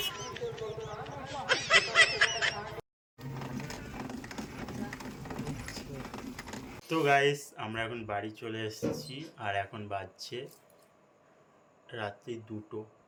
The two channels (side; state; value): both; identical; correlation 1.00